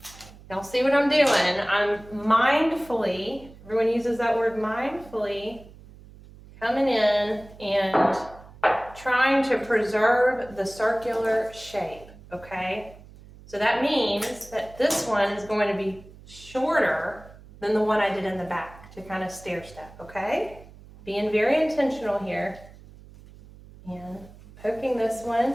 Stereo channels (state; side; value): noise; right; hum, 21 dB below the sound